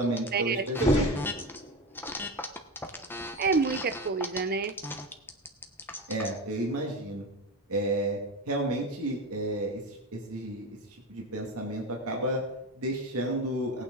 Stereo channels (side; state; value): both; normal; correlation 0.22